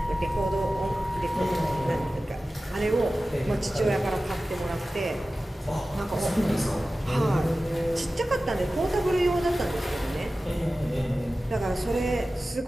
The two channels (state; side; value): normal; both; correlation 0.95